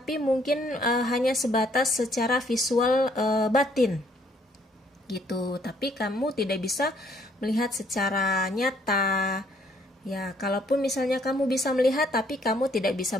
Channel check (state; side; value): normal; both; correlation 0.66